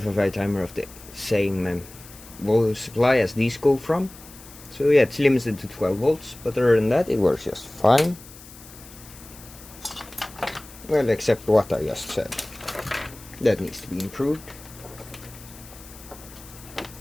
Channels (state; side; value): noise; left; hiss, 19 dB below the sound